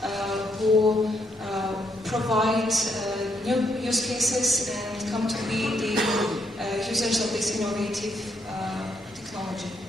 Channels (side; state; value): both; normal; correlation 0.75